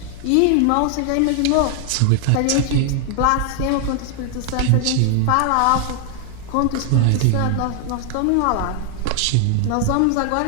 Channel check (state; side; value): different; both; correlation 0.00